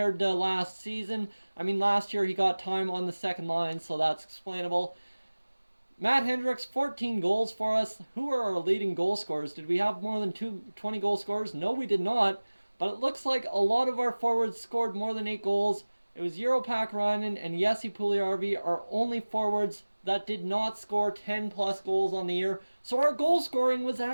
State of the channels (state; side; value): inverted; both; correlation -1.00